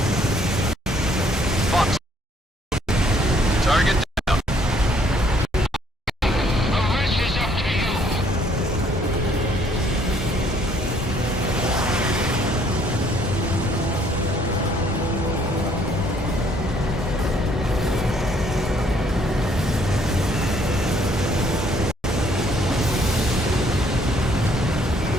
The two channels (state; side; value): normal; both; correlation 0.64